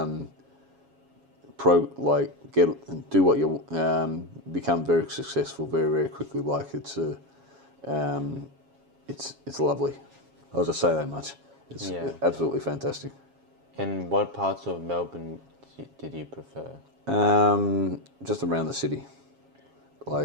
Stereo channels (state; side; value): late; left; 7.3 ms